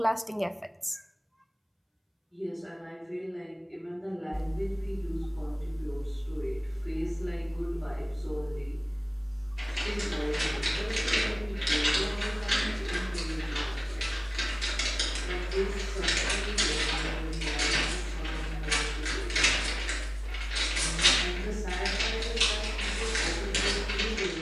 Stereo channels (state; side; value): identical; both; correlation 1.00